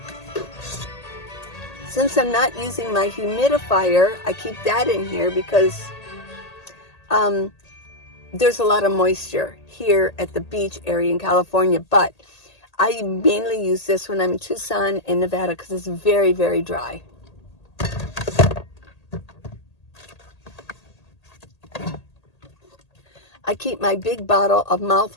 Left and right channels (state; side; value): late; right; 1.8 ms